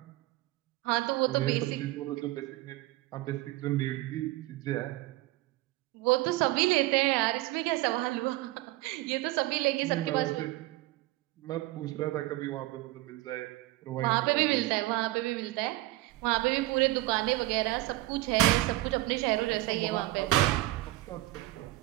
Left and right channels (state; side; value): quieter; left; 18.4 dB